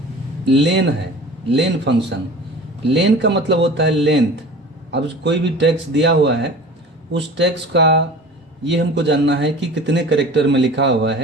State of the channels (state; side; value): normal; both; correlation 0.40